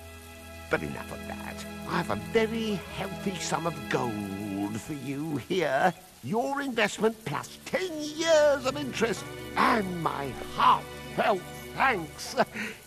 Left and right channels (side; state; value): both; identical; correlation 1.00